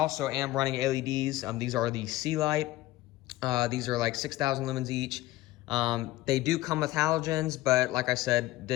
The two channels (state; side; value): quieter; right; 17.1 dB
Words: am running LEDs. These are the C-Light. These are like 6,000 lumens each. They do come with halogens, but like I said,